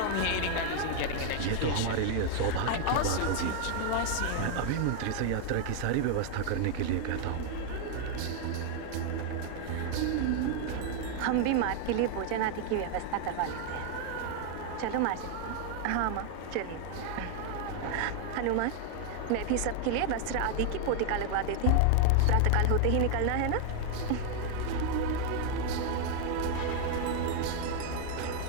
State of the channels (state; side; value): different; both; correlation 0.00